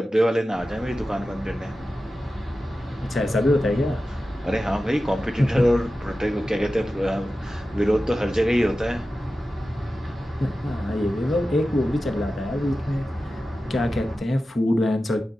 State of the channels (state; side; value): normal; both; correlation 0.94